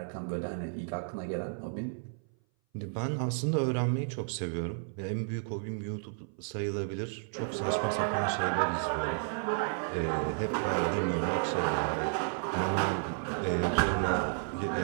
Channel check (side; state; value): left; silent; 56 dB below the other